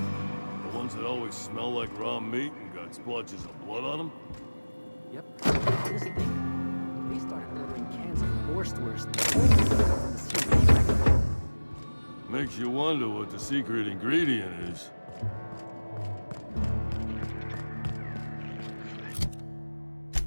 The ones that always smell like raw meat and got splotches of blood on them? Yep. Honest thing, they started ordering cans of Wurstwurst only from the sea. Makes you wonder what the secret ingredient is.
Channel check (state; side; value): inverted; both; correlation -1.00